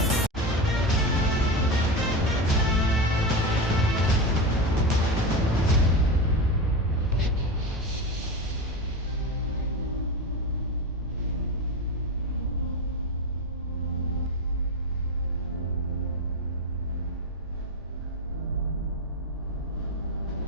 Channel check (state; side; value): normal; both; correlation 0.20